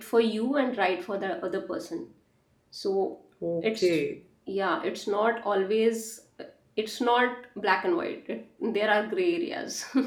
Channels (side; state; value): both; identical; correlation 1.00